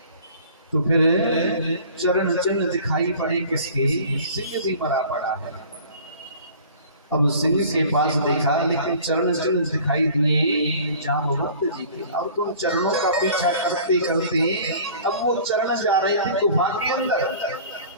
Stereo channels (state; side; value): inverted; both; correlation -0.47